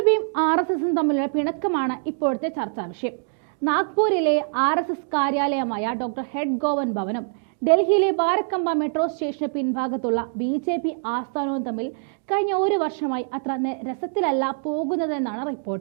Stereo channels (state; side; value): silent; left; digital silence